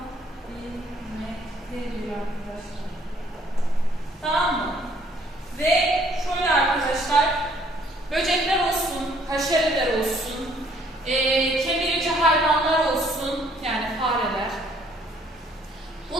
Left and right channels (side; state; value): both; normal; correlation 0.62